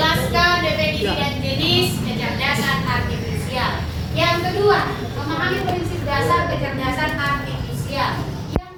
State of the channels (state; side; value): identical; both; correlation 1.00